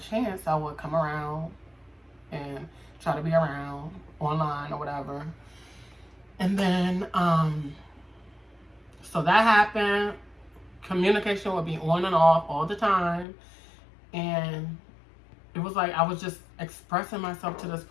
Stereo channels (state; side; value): drops out; right; at 13.2 s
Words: I would come around and try to be around online or whatever. And then, so that happened. Communication would be on and off all the time. And it was like I was just expressing myself to this